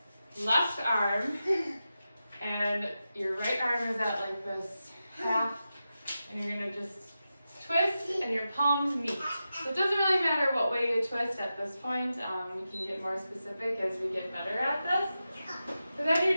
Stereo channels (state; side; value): inverted; both; correlation -0.91